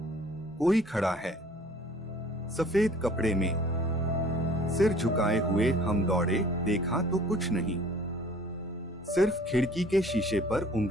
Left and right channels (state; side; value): normal; both; correlation 0.52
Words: कोई खड़ा है, सफेद कपड़े में। सिर झुकाए हुए हम दौड़े, देखा तो कुछ नहीं, सिर्फ खिड़की के शीशे पर